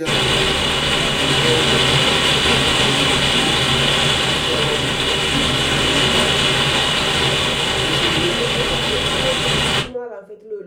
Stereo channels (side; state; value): both; identical; correlation 1.00